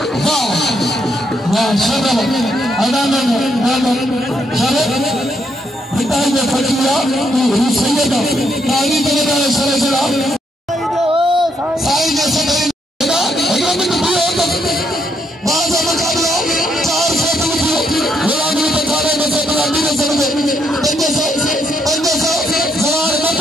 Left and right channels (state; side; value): normal; both; correlation 0.75